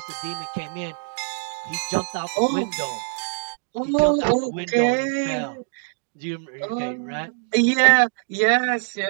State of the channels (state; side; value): silent; left; digital silence